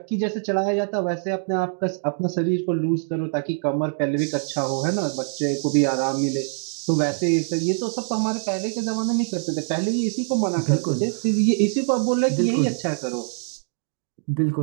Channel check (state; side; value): silent; left; 61 dB below the other